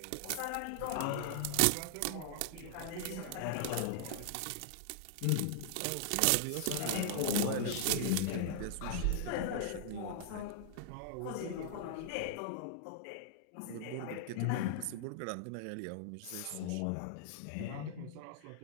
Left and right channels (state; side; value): different; both; correlation -0.01